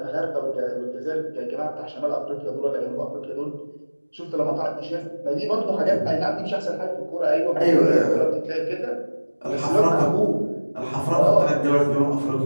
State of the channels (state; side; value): inverted; both; correlation -1.00